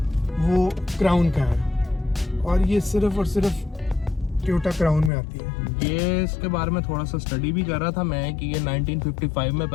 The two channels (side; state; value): right; drops out; at 5.1 s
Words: वो क्राउन का है, और ये सिर्फ और सिर्फ टोयोटा क्राउन में आती है। ये इसके बारे में थोड़ा सा स्टडी भी कर रहा था मैं कि ये 1955 में